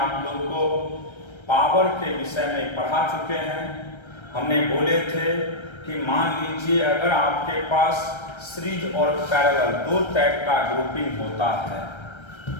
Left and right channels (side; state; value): right; late; 1.3 ms